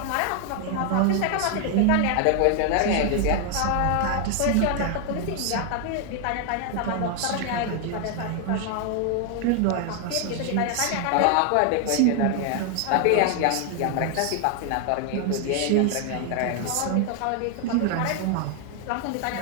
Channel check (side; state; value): both; different; correlation 0.00